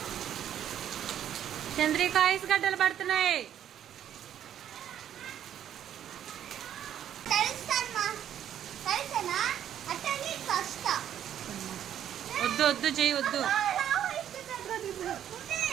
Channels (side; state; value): left; quieter; 10.3 dB